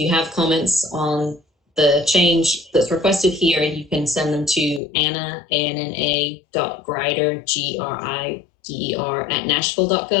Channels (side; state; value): right; drops out; at 4.8 s